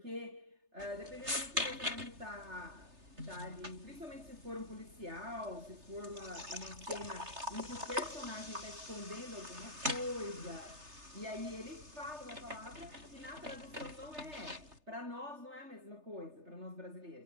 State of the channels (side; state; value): left; late; 3.3 ms